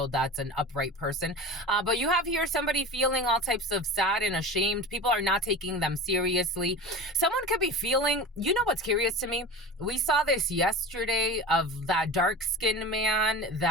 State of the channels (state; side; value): normal; both; correlation 0.32